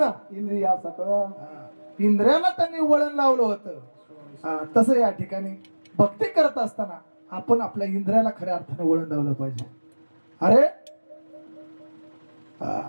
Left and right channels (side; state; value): both; inverted; correlation -1.00